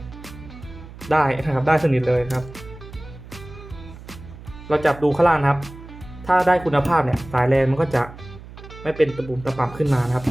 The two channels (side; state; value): right; noise; hum, 16 dB below the sound